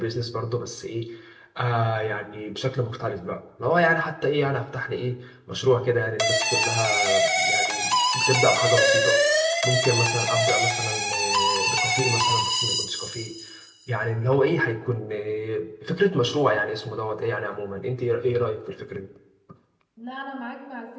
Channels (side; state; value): both; identical; correlation 1.00